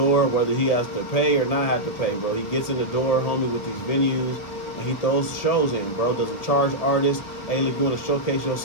whether he has to pay or not have to pay, bro. He gets in the door, homie, with these venues. And he throws shows in, bro. Doesn't charge artists. Hey, look, you want to showcase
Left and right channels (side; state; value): right; late; 1.5 ms